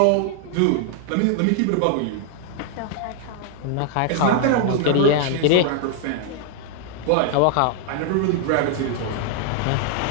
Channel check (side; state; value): both; different; correlation 0.00